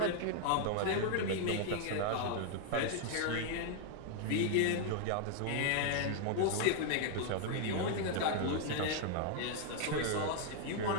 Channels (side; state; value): both; different; correlation 0.00